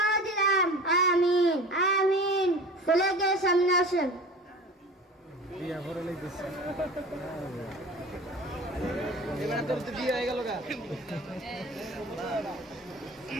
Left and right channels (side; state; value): both; normal; correlation 0.38